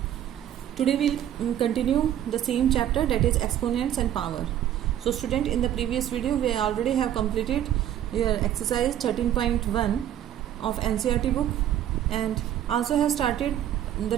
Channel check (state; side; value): quieter; left; 11.1 dB